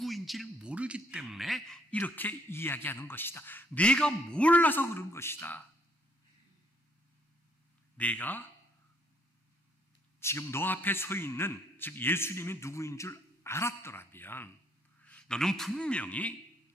모르기 때문에 이렇게 이야기하는 것이다. 네가 몰라서 그런 것이다. 네가 지금 너 앞에 서 있는 즉 예수님이 누구인 줄 알았더라면 너는 분명히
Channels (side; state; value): both; normal; correlation 0.67